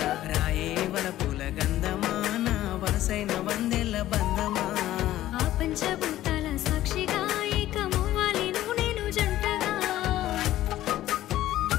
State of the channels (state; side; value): quieter; right; 14.2 dB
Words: రాయే వలపుల గంధమా నా వరసైన వందెల్ల బంధమా ఆ పంచభూతాల సాక్షిగా ఏకమవ్వాలి నువ్వు నేను జంటగా